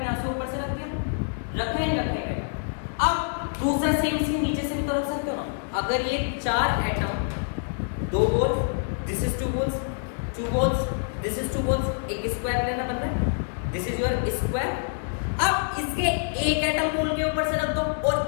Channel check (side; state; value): right; silent; 61 dB below the other